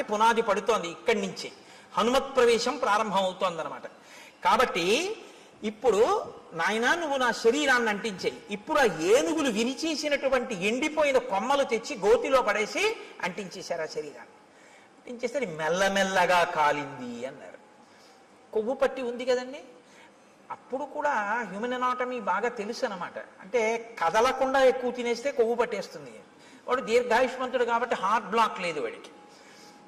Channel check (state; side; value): identical; both; correlation 1.00